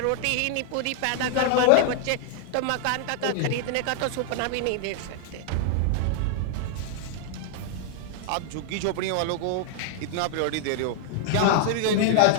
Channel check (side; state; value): both; different; correlation 0.00